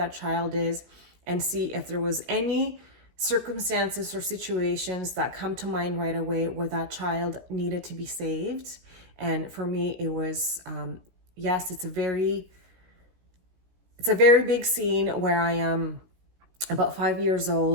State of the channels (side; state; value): left; late; 16 ms